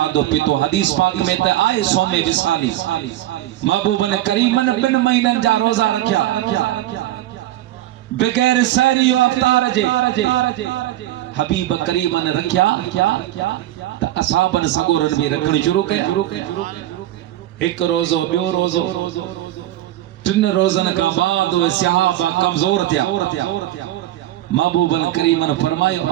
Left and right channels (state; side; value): quieter; left; 14.2 dB